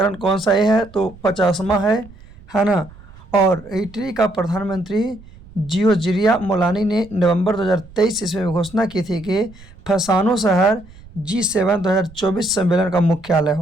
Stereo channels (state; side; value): noise; right; rumble, 21 dB below the sound